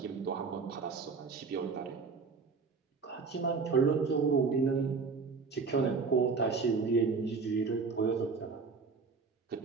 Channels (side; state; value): left; quieter; 4.8 dB